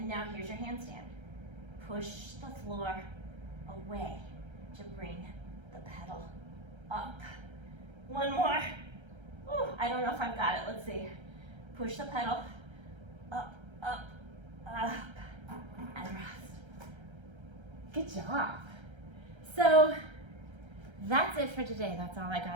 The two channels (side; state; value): left; late; 1.3 ms